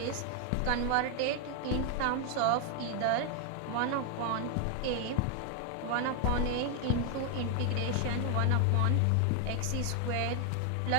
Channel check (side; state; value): both; different; correlation 0.00